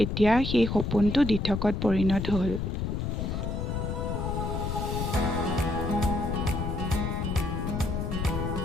এতিয়া সেই সপোনটো দিঠকত পৰিণত হ'ল।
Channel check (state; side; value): noise; left; rumble, 2 dB below the sound